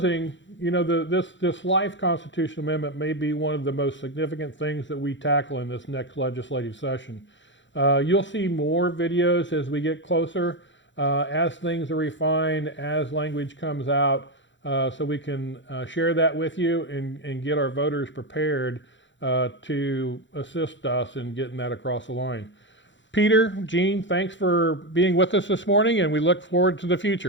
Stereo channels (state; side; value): late; right; 0.54 ms